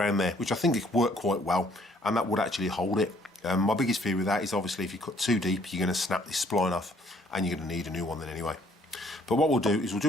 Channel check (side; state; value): both; normal; correlation 0.63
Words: there, which I think it worked quite well, and that would actually hold it. My biggest fear with that is obviously if you cut too deep, you're going to snap this spline off and you're going to need a new one then anyway. But what we'll do is we'll